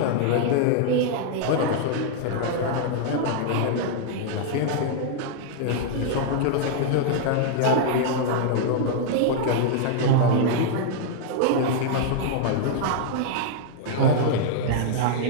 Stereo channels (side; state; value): both; different; correlation -0.01